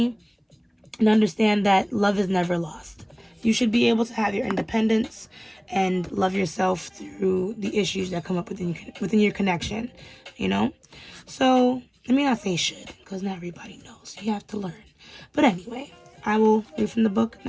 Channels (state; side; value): identical; both; correlation 1.00